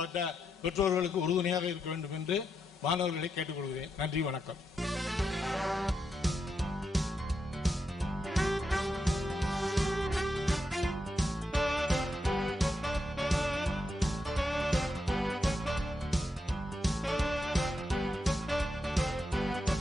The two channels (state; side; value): normal; both; correlation 0.84